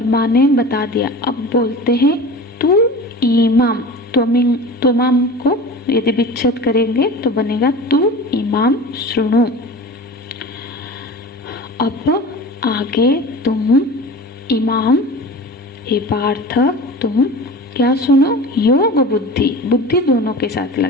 माँ ने बता दिया। अब बोलते हैं तू इमाम, तुमाम को यदि विच्छेद करेंगे तो बनेगा तू इमाम शृणु। अब आगे तुम इमाम, हे पार्थ तुम क्या सुनो, योग बुद्धि, बुद्धि दोनों के साथ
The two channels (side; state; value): both; normal; correlation 0.35